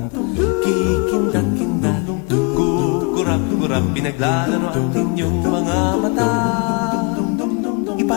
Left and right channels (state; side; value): quieter; right; 32.6 dB